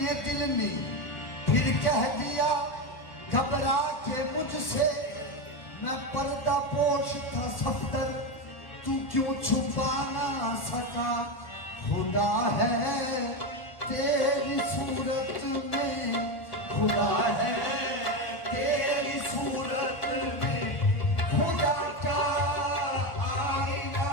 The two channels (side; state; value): right; late; 1.7 ms